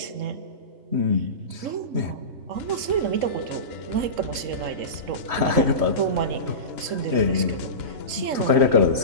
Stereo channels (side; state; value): left; late; 3.7 ms